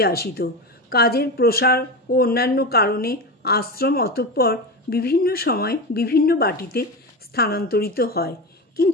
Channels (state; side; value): normal; both; correlation 0.21